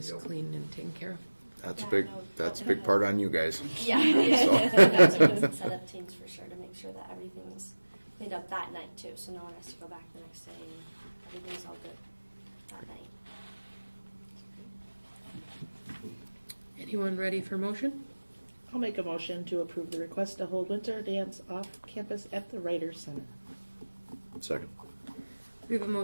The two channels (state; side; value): inverted; both; correlation -1.00